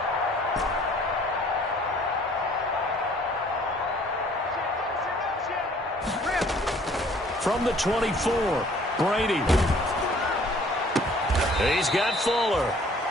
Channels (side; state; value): both; normal; correlation 0.57